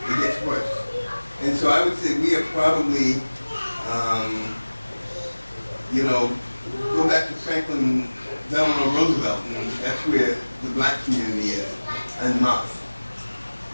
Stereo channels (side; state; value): both; inverted; correlation -1.00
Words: It gets worse. And so I would say we are probably, go back to Franklin Delano Roosevelt, and that's where the black community is, en masse.